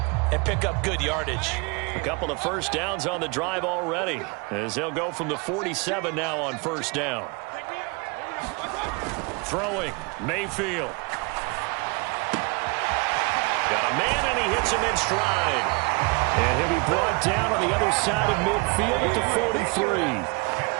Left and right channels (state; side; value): quieter; left; 30.3 dB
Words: and pick up good yardage? A couple of first downs on the drive already as they'll go from the 47 now on first down. Throwing, Mayfield. Got a man, and he hits him in stride. And he'll be brought down on the other side of midfield at the 43.